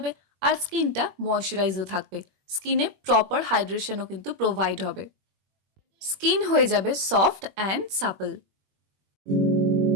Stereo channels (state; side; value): late; left; 21 ms